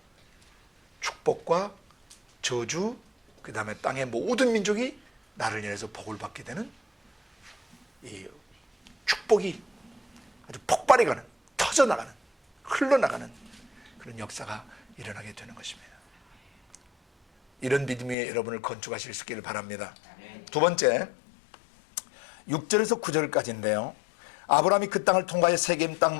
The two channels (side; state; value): right; drops out; at 18.2 s